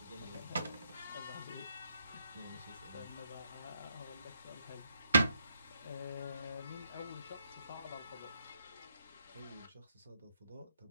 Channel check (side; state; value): both; inverted; correlation -0.78